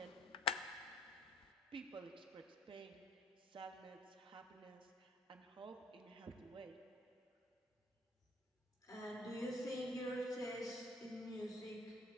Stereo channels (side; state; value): both; normal; correlation 0.56